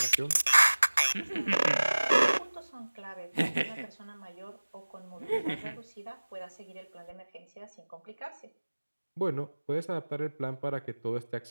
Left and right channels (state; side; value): inverted; both; correlation -1.00